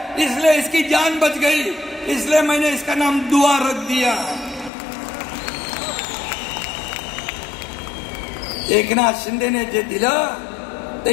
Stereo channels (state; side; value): drops out; right; at 4.7 s